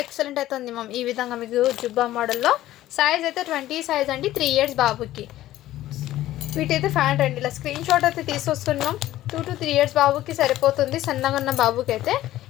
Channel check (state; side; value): quieter; right; 14.6 dB